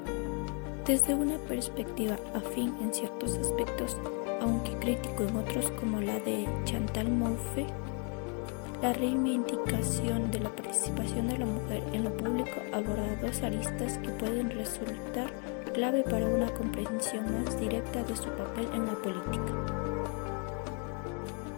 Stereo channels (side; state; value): right; quieter; 37.9 dB